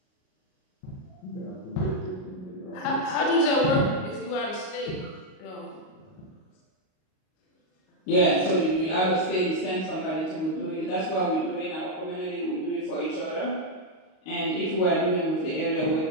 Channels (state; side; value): late; right; 38 ms